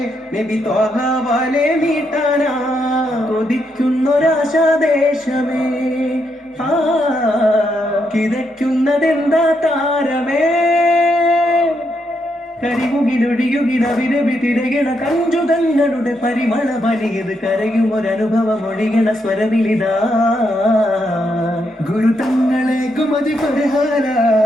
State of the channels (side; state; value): both; normal; correlation 0.79